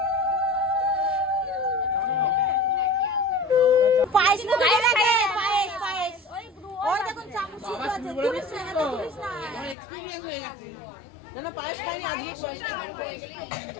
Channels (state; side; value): drops out; right; at 9.8 s